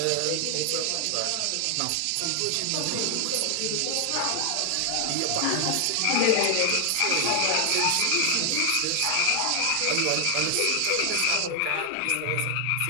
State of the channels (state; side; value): different; both; correlation 0.00